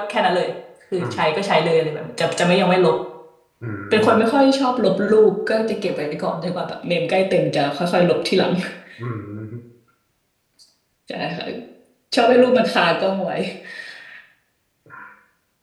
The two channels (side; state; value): both; identical; correlation 1.00